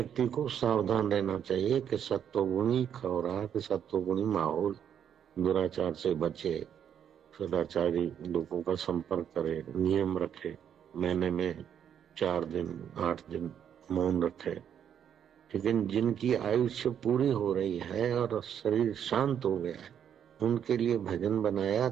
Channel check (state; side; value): quieter; left; 8.9 dB